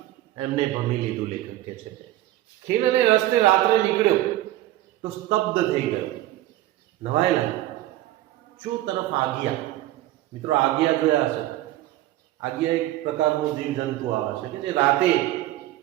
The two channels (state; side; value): quieter; left; 15.4 dB